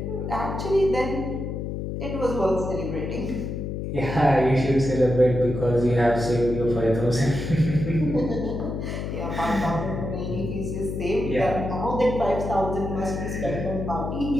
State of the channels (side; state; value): left; noise; hum, 4 dB below the sound